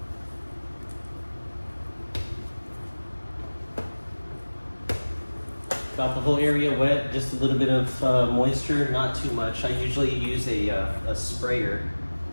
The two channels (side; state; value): both; inverted; correlation -1.00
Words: Got the whole area wet, just a little bit of moisture, not too much. I usually use a sprayer